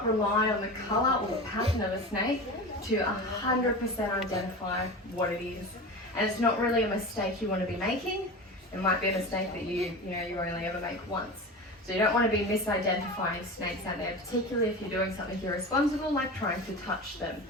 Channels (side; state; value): both; normal; correlation 0.29